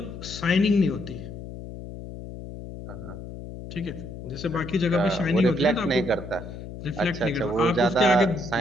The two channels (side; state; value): left; noise; hum, 11 dB below the sound